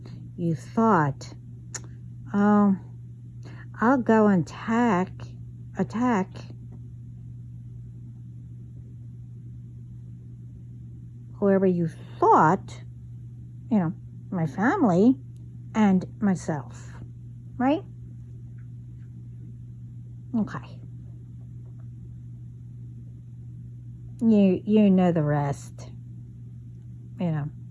You thought, oh, I'll go and attack whoever you thought, my family and myself, right? Okay. You know the rest,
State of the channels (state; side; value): identical; both; correlation 1.00